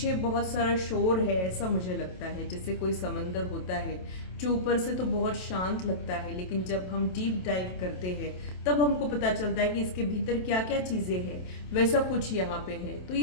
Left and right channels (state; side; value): late; right; 27 ms